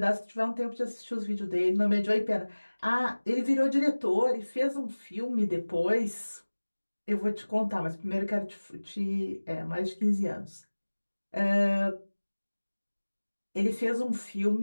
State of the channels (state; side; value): inverted; both; correlation -1.00